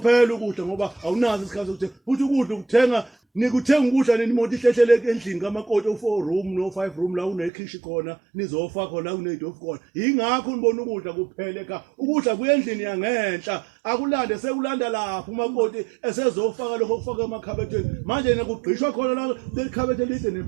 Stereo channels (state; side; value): drops out; left; at 7.5 s